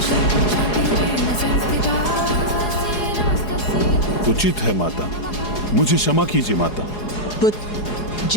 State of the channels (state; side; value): late; right; 4.8 ms